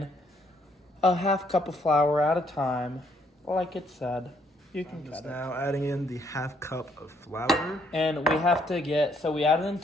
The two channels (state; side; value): normal; both; correlation 0.69